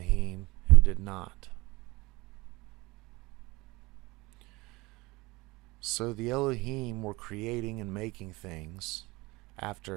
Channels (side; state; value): left; quieter; 22.7 dB